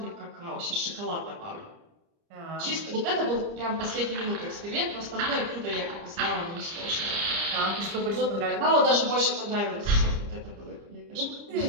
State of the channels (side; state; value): left; late; 30 ms